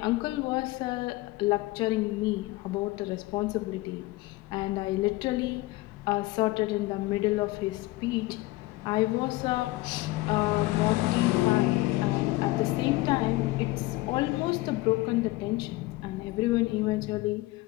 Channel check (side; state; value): right; quieter; 20.0 dB